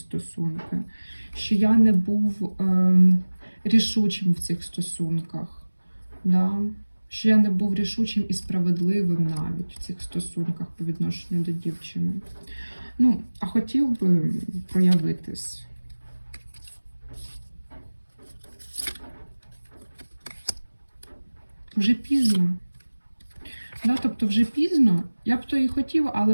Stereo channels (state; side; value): inverted; both; correlation -1.00